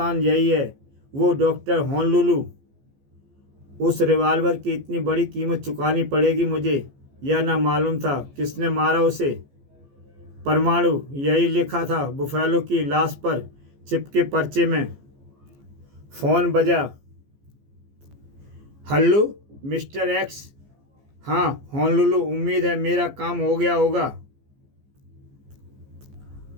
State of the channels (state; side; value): late; left; 14 ms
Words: यही है, वो डॉक्टर होनोलुलु। उस रिवॉल्वर की इतनी बड़ी कीमत चुकानी पड़ेगी मुझे, यह ना मालूम था। किसने मारा उसे? परमाणु, यही लिखा था बुफैलो की लाश पर चिपके पर्चे में। फोन बजा। Hello mister x. हाँ होनोलुलु, उम्मीद है मेरा काम हो गया होगा।